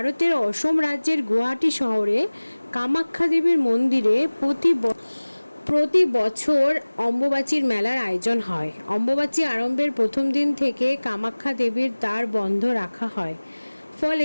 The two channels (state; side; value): inverted; both; correlation -1.00